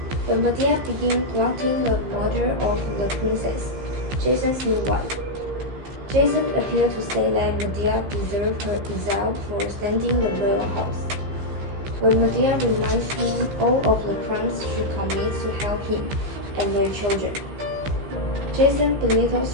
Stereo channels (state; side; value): late; left; 15 ms